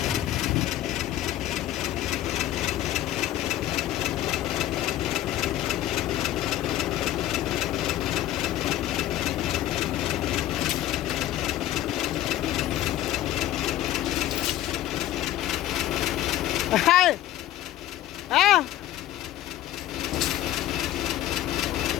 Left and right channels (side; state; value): right; quieter; 13.6 dB